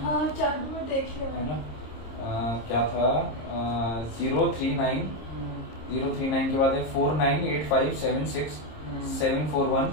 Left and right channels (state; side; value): late; right; 26 ms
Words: हाँ चालू में देखिए है ना। क्या था 039 039 के बाद है 498576 741